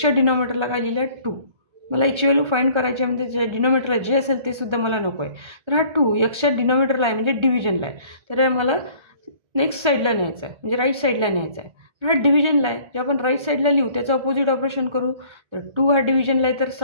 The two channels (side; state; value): left; late; 1.3 ms